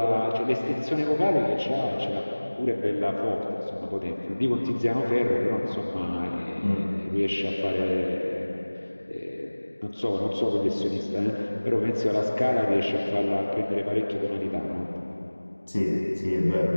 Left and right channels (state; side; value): inverted; both; correlation -1.00